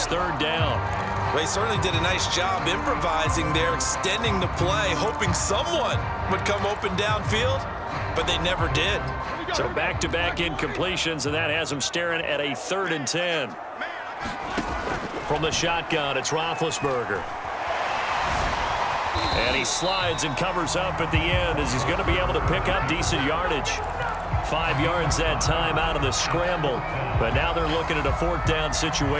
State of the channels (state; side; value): identical; both; correlation 1.00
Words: 3rd down. They certainly did a nice job improvising there, extending the play, hoping someone would come open downfield, but they never did. So back-to-back incompletions, and that has them staring at a 3rd and 10. From the shotgun, it's Roethlisberger. And he slides and covers up at the end as he's going to be able to pick up decent yardage. 5 yards that time out of the scramble. But now they're looking at a 4th down